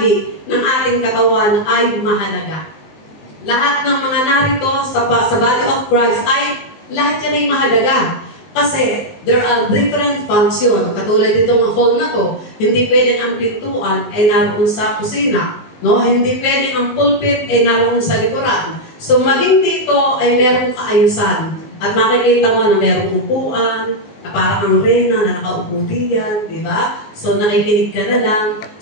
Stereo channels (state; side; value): late; right; 19 ms